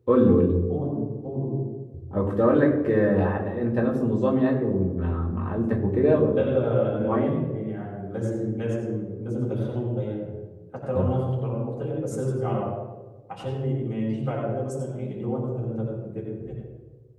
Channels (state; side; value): identical; both; correlation 1.00